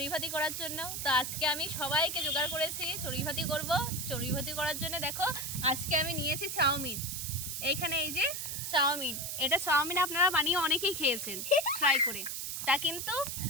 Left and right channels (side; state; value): right; noise; hiss, 4 dB below the sound